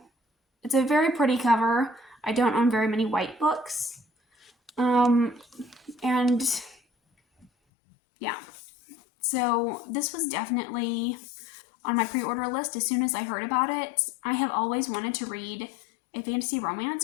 It's a very pretty cover. I don't own very many white books. And yeah. So this was definitely on my pre-order list as soon as I heard about it. I have always wanted to read a fantasy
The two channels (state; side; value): drops out; right; at 7.5 s